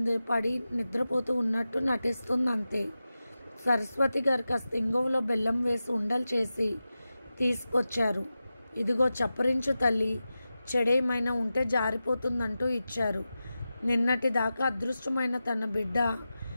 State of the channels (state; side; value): inverted; both; correlation -0.93